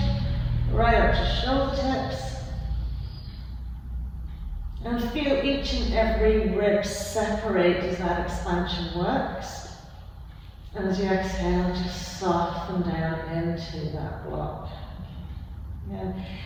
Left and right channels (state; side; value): identical; both; correlation 1.00